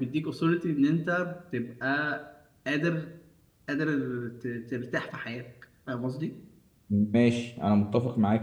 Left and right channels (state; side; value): identical; both; correlation 1.00